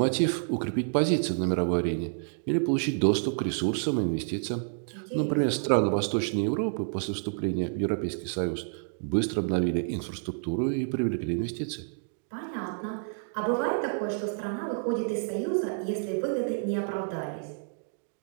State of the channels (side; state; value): left; silent; digital silence